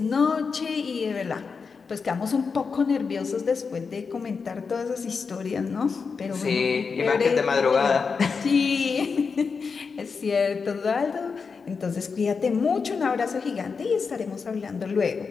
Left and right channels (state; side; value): quieter; right; 5.3 dB